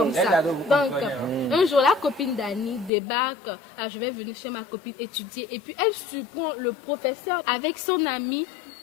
Les ça. ados, vous Donc, comprenez, un jour, la copine d'Annie débarque. Je vais venir chez ma copine étudier. Et puis, elle surprend le professeur avec son ami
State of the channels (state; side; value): drops out; right; at 2.9 s